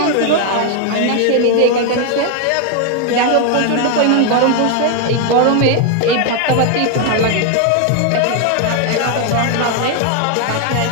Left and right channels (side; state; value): both; different; correlation 0.00